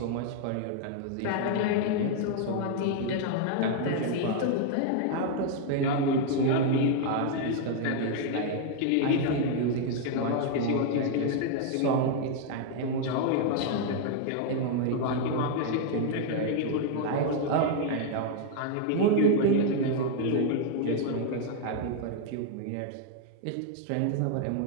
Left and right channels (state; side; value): different; both; correlation 0.00